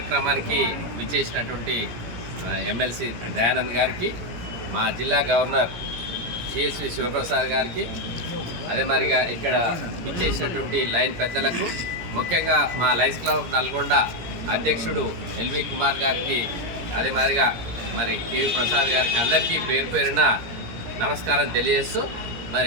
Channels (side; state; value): left; late; 17 ms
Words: విచ్చేసినటువంటి ఎమ్మెల్సీ దయానంద్ గారికి, మా జిల్లా గవర్నర్ CSV శివప్రసాద్ గారికి, అదే మరిగా ఇక్కడ విచ్చేసినటువంటి లైన్ పెద్దలకు, ముఖ్యంగా మా లయన్స్ క్లబ్ నల్గొండ అధ్యక్షుడు ఎల్వి కుమార్ గారికి, అదే మాదిరిగా మరి కేవీ ప్రసాద్ గారికి, అందరికీ పేరు పేరున నమస్కారం తెలియజేస్తూ,